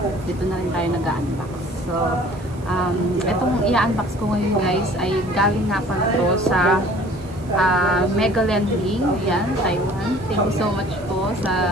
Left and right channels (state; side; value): noise; right; hiss, 26 dB below the sound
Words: dito na rin tayo nag-unbox. So, itong i-unbox ko ngayon guys ay galing nga pala to sa Megaland Link, yan, Taiwan. Thank you so much po